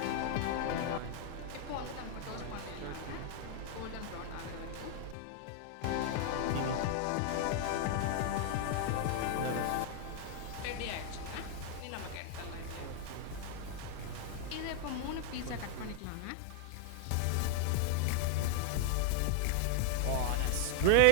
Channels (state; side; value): different; both; correlation 0.00